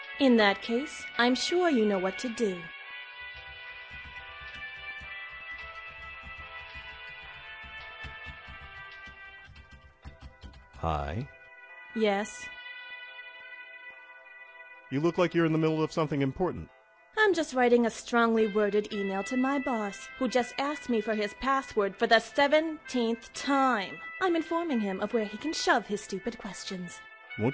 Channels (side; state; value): both; identical; correlation 1.00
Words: In that case, I'm sure you know what to do. Hi. Yes? You look like you're in the middle of something important. I'm just writing a strongly worded email to my boss, who just asked me for his password for the 17th time. I'm informing him of where he can shove his stupid questions.